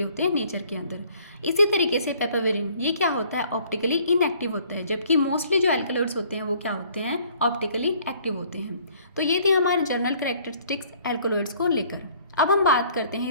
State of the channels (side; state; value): both; inverted; correlation -0.59